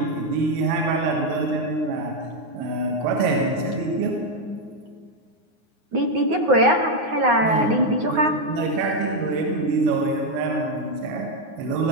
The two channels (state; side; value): late; left; 9.6 ms